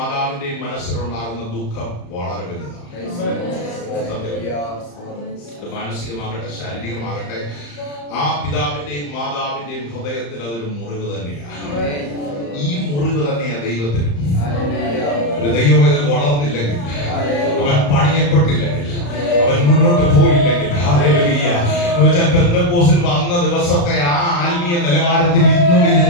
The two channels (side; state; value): right; late; 35 ms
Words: മനസ്സിലുണ്ടാകുന്ന ദുഃഖം വളരെ വലുതാണ്. മാനസികമാകട്ടെ ശാരീരികമാകട്ടെ ആ പിതാവിന്റെയും മാതാവിന്റെയും ഹൃദയത്തിൽ അതൊരു മുറിവ് തന്നെയാണ്. ഈ മുറിവ് തന്നെയാണ് ദൈവത്തിനും. ഒരു ദൈവവേദന വളർന്നില്ലെങ്കിൽ, അവൻ പണിയപ്പെട്ടില്ലെങ്കിൽ, അവൻ മുന്നോട്ട് പോയില്ലെങ്കിൽ, പെന്തക്കോസ്തിൽ വന്ന ദിവസത്തെ ആ ആത്മീയ നിലവാരത്തിൽ ഇന്നും